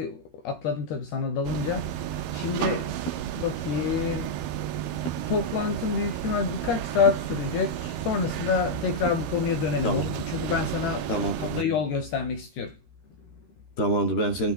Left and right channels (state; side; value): late; right; 13 ms